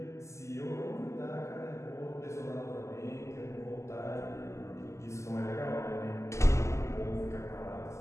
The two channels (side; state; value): right; late; 0.14 ms